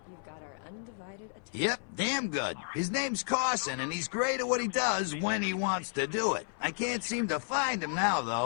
You've got our undivided attention. Yep, damn good. His name's Carson, and he's great at what he does when he wants to do it. I can't seem to find him now,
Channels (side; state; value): right; silent; 56 dB below the other